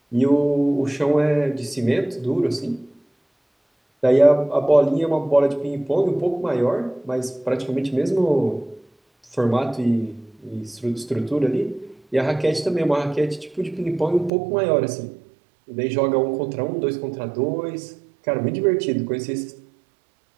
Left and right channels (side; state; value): left; drops out; at 14.3 s